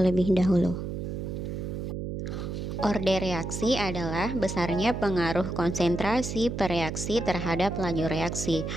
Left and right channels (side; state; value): right; noise; hum, 5 dB below the sound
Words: dahulu. Orde reaksi adalah besarnya pengaruh konsentrasi per reaksi terhadap laju reaksi.